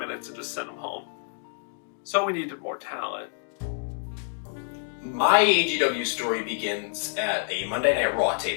and just send them home? So we needed more talent. My AGW story begins at a Monday Night Raw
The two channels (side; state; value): right; silent; digital silence